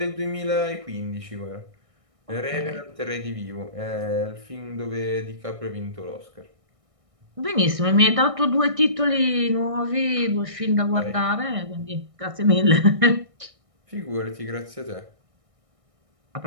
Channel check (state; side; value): late; left; 1.6 ms